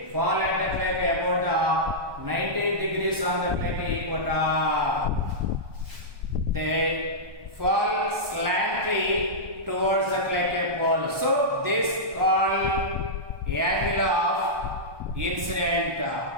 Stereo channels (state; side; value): late; left; 1.2 ms